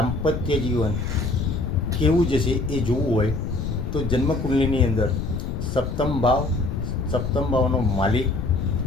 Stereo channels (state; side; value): noise; left; rumble, 4 dB below the sound